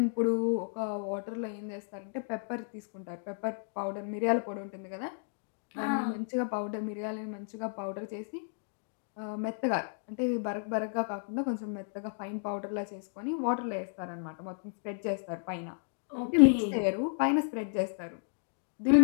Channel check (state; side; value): silent; right; digital silence